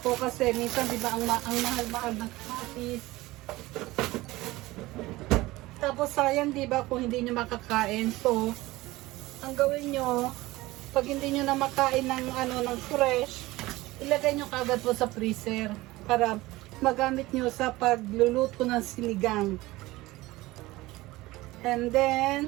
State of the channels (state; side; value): quieter; left; 19.2 dB